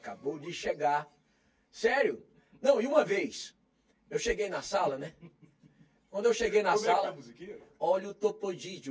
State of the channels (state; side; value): identical; both; correlation 1.00